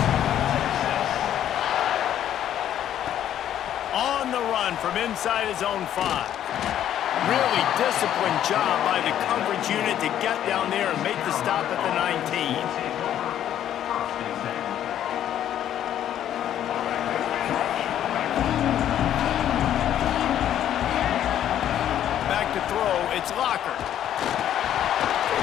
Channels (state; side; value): quieter; right; 10.9 dB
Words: On the run from inside his own 5. Really disciplined job by the coverage unit to get down there and make the stop at the 19. Back to throw, it's Locker.